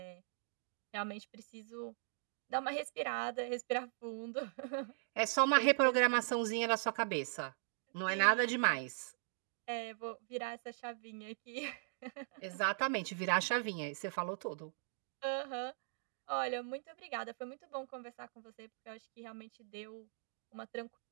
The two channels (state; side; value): silent; left; digital silence